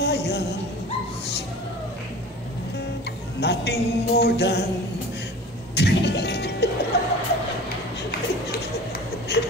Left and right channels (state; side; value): normal; both; correlation 0.40